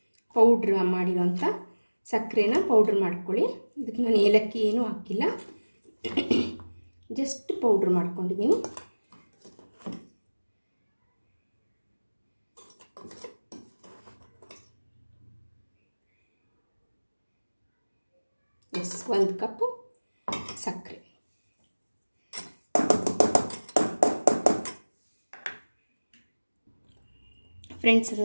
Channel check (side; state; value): both; inverted; correlation -1.00